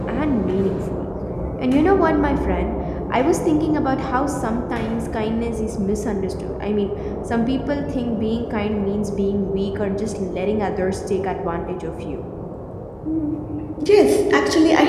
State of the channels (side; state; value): both; identical; correlation 1.00